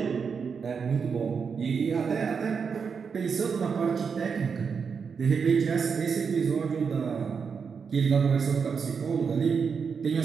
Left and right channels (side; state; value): left; quieter; 6.0 dB